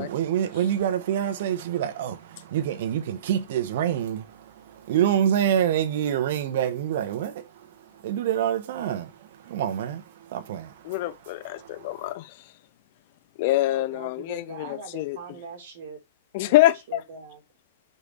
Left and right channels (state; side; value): inverted; both; correlation -0.32